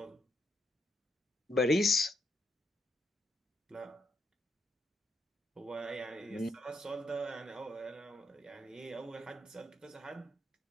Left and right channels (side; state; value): both; normal; correlation 0.78